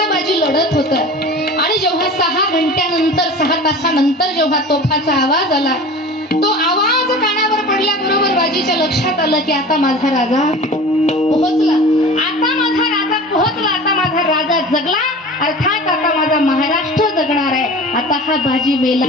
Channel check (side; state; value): both; normal; correlation 0.37